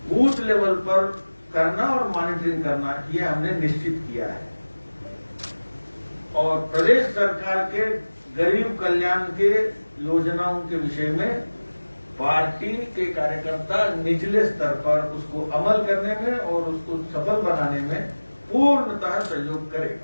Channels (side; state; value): both; inverted; correlation -1.00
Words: बूथ लेवल पर करना और मॉनिटरिंग करना, ये हमने निश्चित किया है। और प्रदेश सरकार के गरीब कल्याण के योजनाओं के विषय में पार्टी के कार्यकर्ता निचले स्तर पर उसको अमल करने में और उसको सफल बनाने में पूर्णतः सहयोग